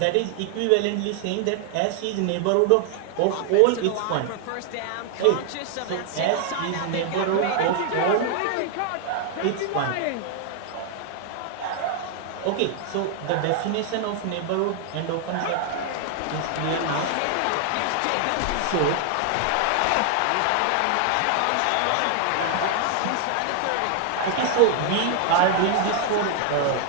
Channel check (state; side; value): different; both; correlation 0.00